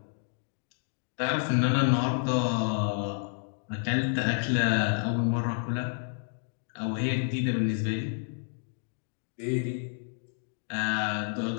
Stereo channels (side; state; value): right; silent; digital silence